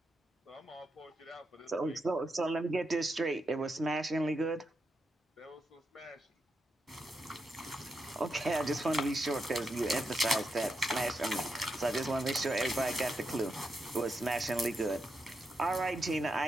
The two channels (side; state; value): both; normal; correlation 0.85